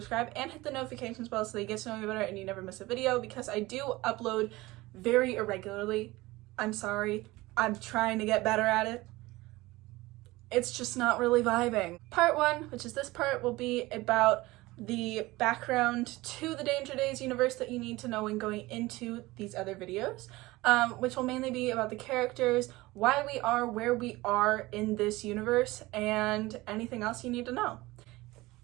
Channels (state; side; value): quieter; left; 20.0 dB